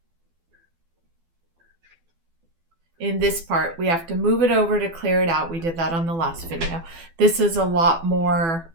in this part, we have to move it over to clear it out. We did that on the last video. This is a lot more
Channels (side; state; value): left; late; 12 ms